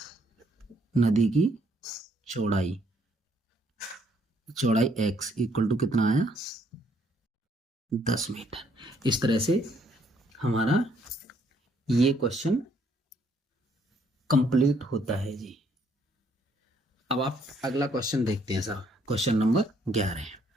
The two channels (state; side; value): normal; both; correlation 0.68